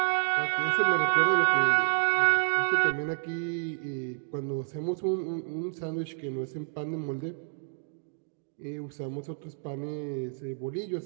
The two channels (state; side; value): silent; left; digital silence